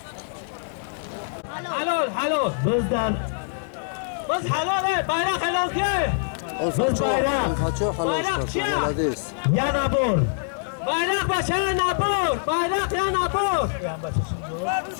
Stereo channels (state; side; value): silent; right; digital silence